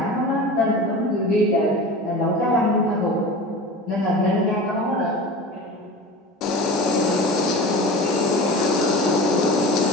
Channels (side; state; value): both; normal; correlation 0.33